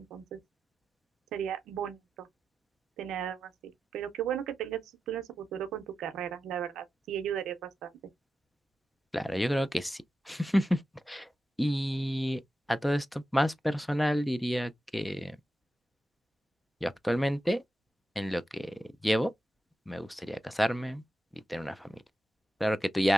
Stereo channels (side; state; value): both; normal; correlation 0.91